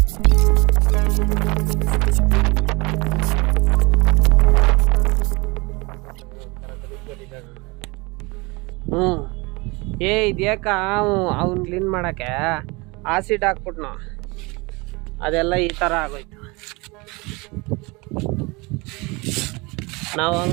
ಇದ್ಯಾಕ ಅವ್ನು ಕ್ಲೀನ್ ಮಾಡೋಕ್ಕೆ ಆಸಿಡ್ ಹಾಕ್ಬಿಟ್ನು, ಅದೆಲ್ಲ ಈ ಥರ ಆಗೋಯ್ತು. ನಾವು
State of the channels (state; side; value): quieter; left; 26.1 dB